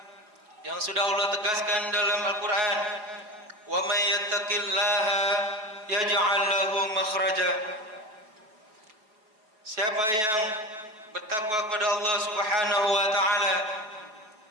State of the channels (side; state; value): left; late; 4.7 ms